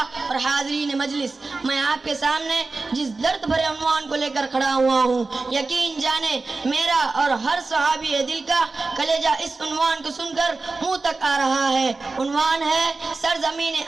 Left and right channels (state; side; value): quieter; left; 3.7 dB